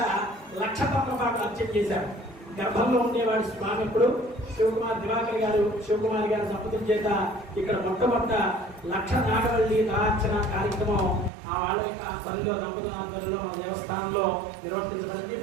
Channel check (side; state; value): left; drops out; at 11.3 s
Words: 1,00,000 తమలపాకులు అర్చన చేశారు. గర్భంలో ఉండేవాడు స్వామి. ఇప్పుడు శివకుమార్ దివాకర్ గారు, శివకుమార్ గారి సంపదల చేత ఇక్కడ మొట్టమొదట 1,00,000 నాగవల్లి దళార్చన కార్యక్రమం ఆ వాళ్ళ యొక్క పనిలో దంపతుల ఆధ్వర్యంలో మన దేవస్థానంలో నిర్వర్తించబడింది.